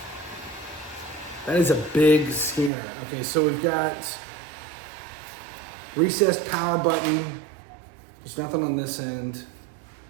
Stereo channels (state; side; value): drops out; left; at 2.7 s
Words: That is a big scanner. Okay, so we've got recessed power button. There's nothing on this end.